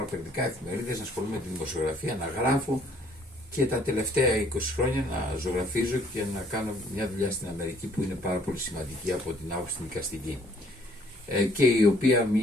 περιοδικά, εφημερίδες, να ασχολούμαι με τη δημοσιογραφία, να γράφω και τα τελευταία 20 χρόνια να ζωγραφίζω και να κάνω μια δουλειά στην Αμερική που είναι πάρα πολύ σημαντική από την άποψη την δικαστική. Και η οποία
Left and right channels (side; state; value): both; normal; correlation 0.62